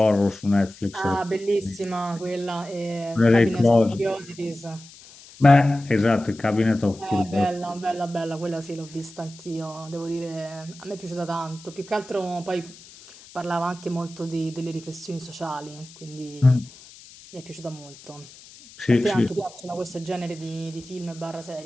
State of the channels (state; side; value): noise; left; hiss, 20 dB below the sound